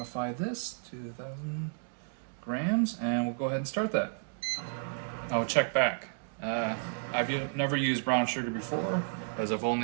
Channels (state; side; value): silent; left; digital silence